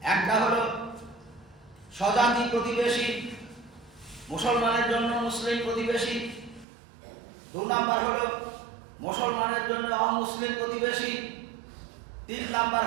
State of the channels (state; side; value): drops out; left; at 6.7 s